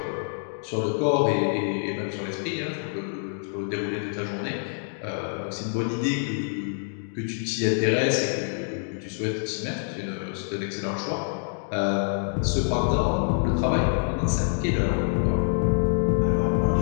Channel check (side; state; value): right; silent; digital silence